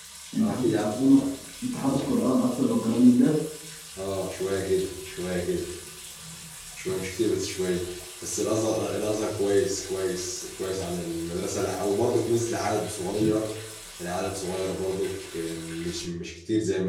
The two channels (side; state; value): both; identical; correlation 1.00